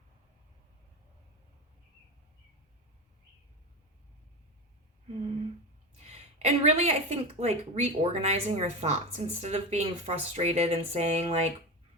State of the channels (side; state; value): both; normal; correlation 0.22